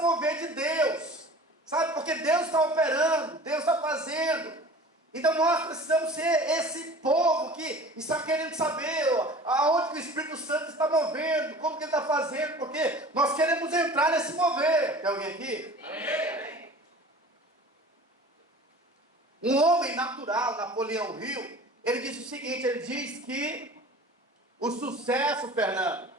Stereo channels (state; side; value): normal; both; correlation 0.42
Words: de Deus, sabe, porque Deus está operando, Deus está fazendo. Então nós precisamos ser esse povo que está querendo saber aonde que o Espírito Santo está movendo, como que ele está fazendo, porque nós queremos entrar nesse mover. Tem alguém aqui? Amém. Um homem natural, Napoleão Hill, ele disse o seguinte, ele diz que o sucesso, Fernando,